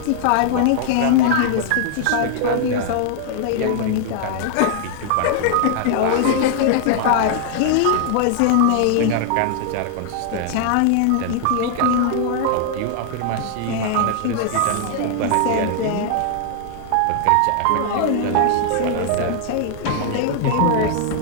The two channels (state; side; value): different; both; correlation 0.00